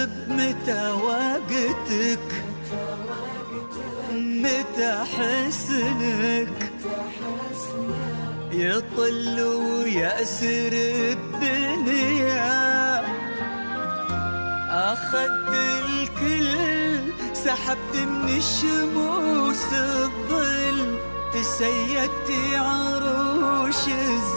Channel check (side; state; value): both; inverted; correlation -1.00